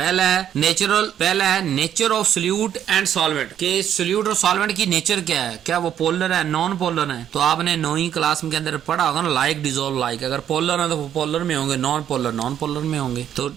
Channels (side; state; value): left; quieter; 10.0 dB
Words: है nature of solute and solvent, के सोल्यूट और सॉल्वेंट की नेचर क्या है, क्या वो पोलर है, नॉन पोलर है, तो आपने 9वीं क्लास के अंदर पढ़ा होगा ना, लाइक डिसॉल्व लाइक, अगर पोलर है तो वो पोलर में होंगे, नॉन पोलर में होंगे, तो